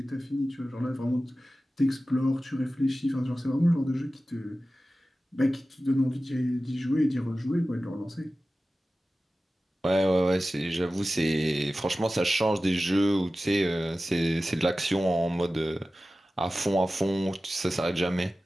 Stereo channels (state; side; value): normal; both; correlation 0.95